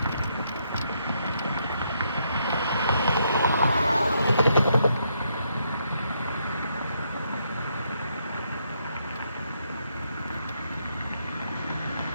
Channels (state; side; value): inverted; both; correlation -0.76